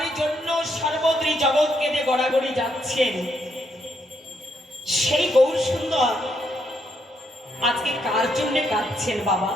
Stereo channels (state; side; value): normal; both; correlation 0.76